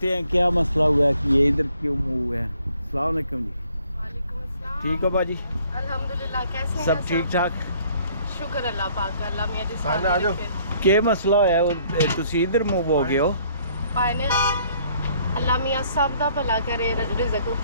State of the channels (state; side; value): inverted; both; correlation -0.62